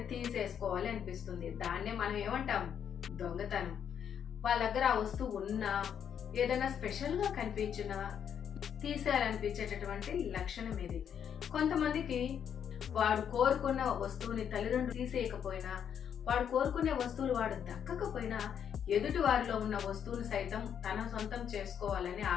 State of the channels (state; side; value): quieter; right; 8.4 dB